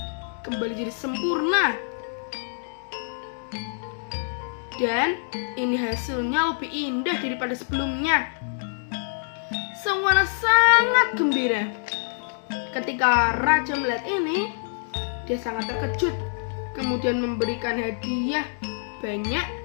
kembali jadi sempurna. Dan ini hasilnya lebih indah daripada sebelumnya. Sang Wana sangat gembira. Ketika raja melihat ini, dia sangat terkejut. Kemudian memberikan hadiah banyak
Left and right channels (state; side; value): silent; right; digital silence